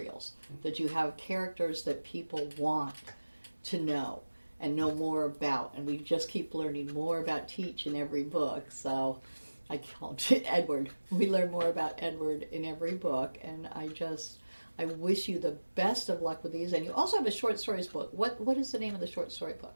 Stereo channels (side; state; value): both; inverted; correlation -1.00